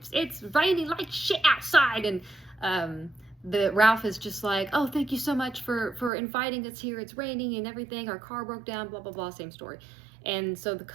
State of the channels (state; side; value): drops out; left; at 6.1 s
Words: it's raining like shit outside," and the Ralph is just like, "Oh, thank you so much for inviting us here. It's raining and everything. Our car broke down. Blah blah blah. Same story." And so the